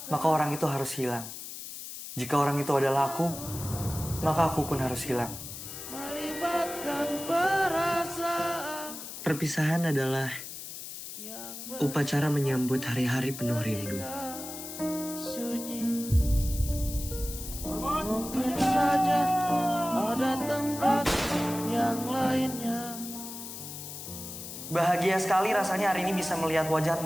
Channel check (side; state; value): left; noise; hiss, 10 dB below the sound